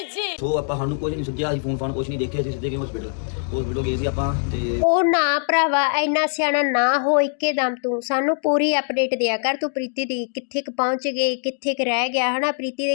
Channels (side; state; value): right; silent; digital silence